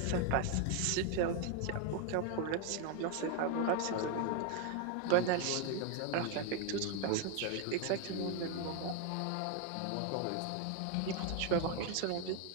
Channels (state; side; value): different; both; correlation 0.01